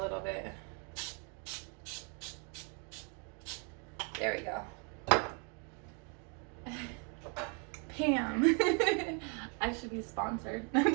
bit. There we go. Pam. I should be sponsored. No, I'm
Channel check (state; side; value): quieter; left; 37.2 dB